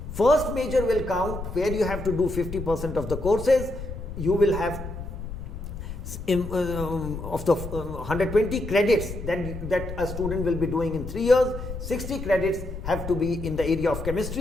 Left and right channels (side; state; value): left; noise; rumble, 8 dB below the sound